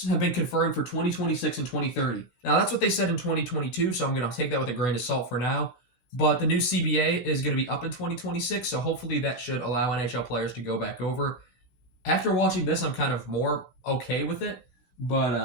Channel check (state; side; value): late; right; 16 ms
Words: have been confirmed for 2026 and 2030. Now, that's what they said in 2022, so I'm going to take that with a grain of salt for now. But the new CBA is going to be up in 2026, so hopefully that should allow NHL players to go back over. After watching this, I'm kind of more okay with it, but